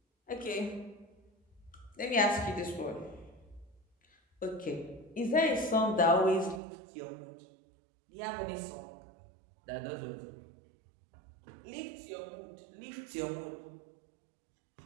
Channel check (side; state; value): left; drops out; at 6.6 s